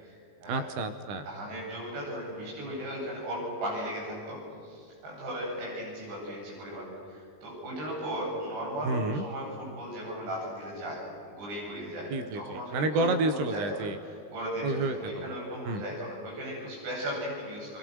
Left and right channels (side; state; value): left; late; 19 ms